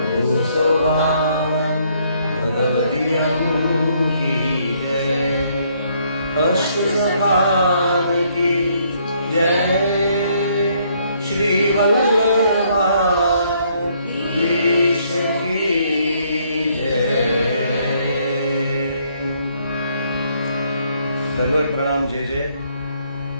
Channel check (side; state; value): both; inverted; correlation -0.68